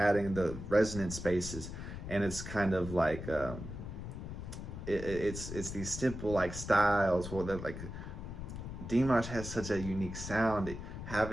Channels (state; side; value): noise; left; rumble, 8 dB below the sound